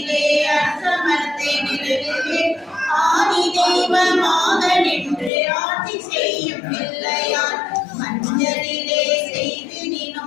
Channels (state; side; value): drops out; right; at 5.3 s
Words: அரசமரத்தை நிழலிலே ஆதி தெய்வமாக நின்று ஆட்சி செய்யும் பிள்ளையார். மஞ்சளிலே